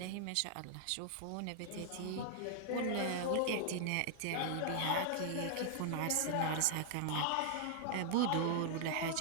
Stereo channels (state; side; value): different; both; correlation 0.00